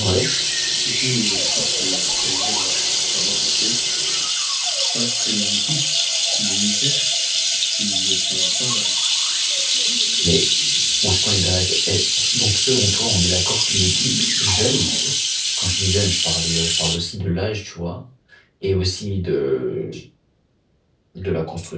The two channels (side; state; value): both; identical; correlation 1.00